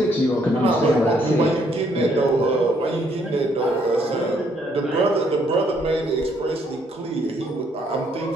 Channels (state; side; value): normal; both; correlation 0.69